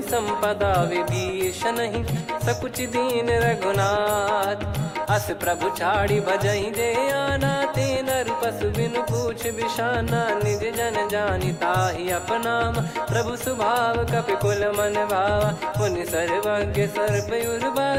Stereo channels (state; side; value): identical; both; correlation 1.00